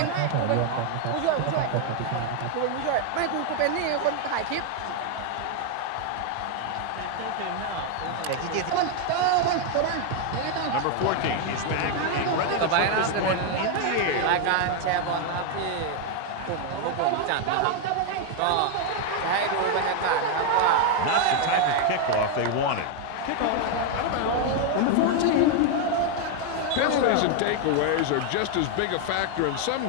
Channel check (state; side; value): different; both; correlation 0.01